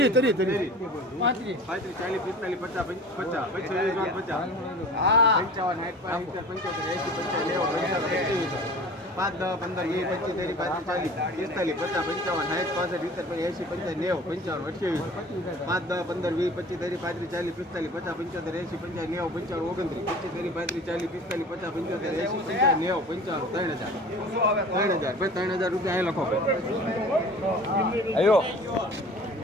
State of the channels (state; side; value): normal; both; correlation 0.42